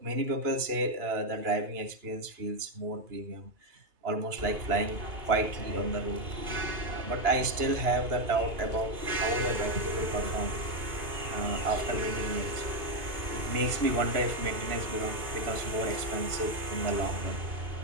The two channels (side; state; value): left; late; 2.9 ms